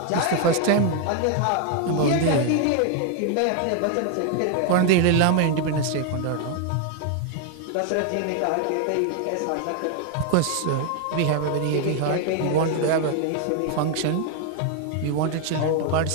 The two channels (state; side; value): different; both; correlation 0.00